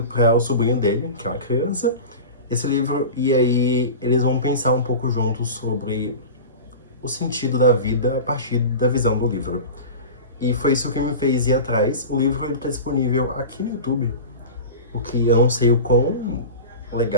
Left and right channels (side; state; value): both; inverted; correlation -0.30